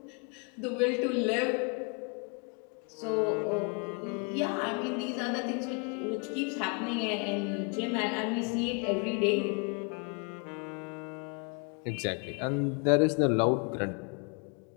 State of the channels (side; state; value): right; quieter; 36.2 dB